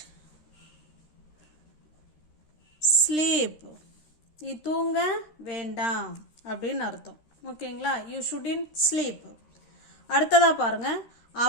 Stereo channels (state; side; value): late; right; 13 ms